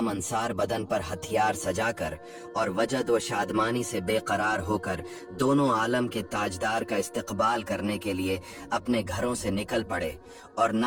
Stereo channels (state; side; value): identical; both; correlation 1.00